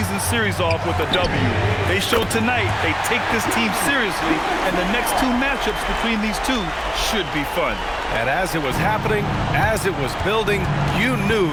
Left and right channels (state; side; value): identical; both; correlation 1.00